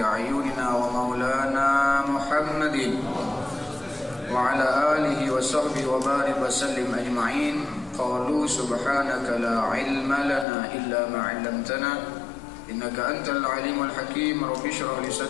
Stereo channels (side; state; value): right; drops out; at 10.5 s